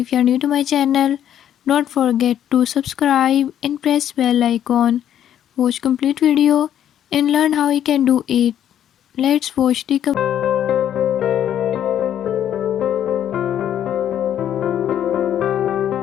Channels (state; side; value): quieter; right; 10.4 dB